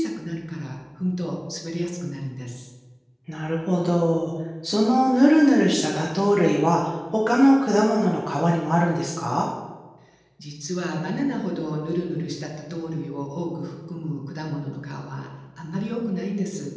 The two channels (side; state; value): both; identical; correlation 1.00